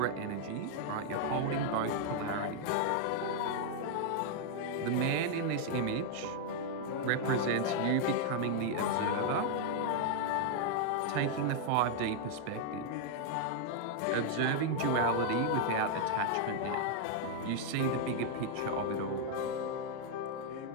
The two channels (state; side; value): different; both; correlation 0.00